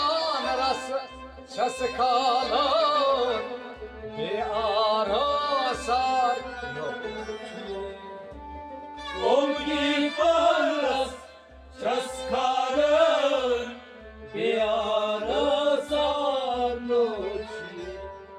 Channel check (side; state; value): both; identical; correlation 1.00